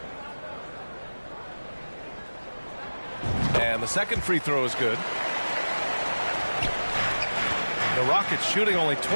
And the second free throw is good. The Rockets shooting only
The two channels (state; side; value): inverted; both; correlation -1.00